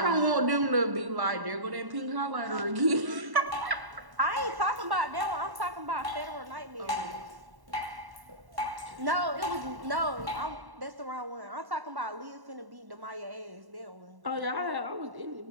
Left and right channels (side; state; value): left; late; 1.1 ms